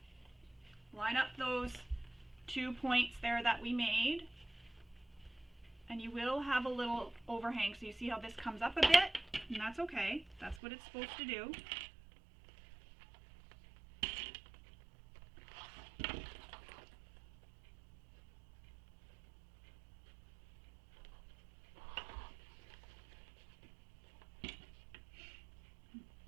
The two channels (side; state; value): left; drops out; at 10.6 s